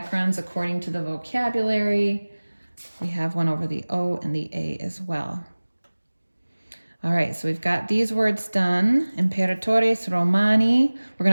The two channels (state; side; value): inverted; both; correlation -1.00